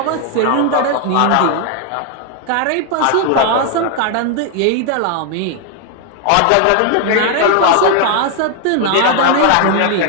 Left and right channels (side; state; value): both; different; correlation 0.00